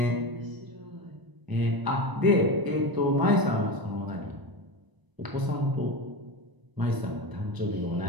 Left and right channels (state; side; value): late; left; 1.0 ms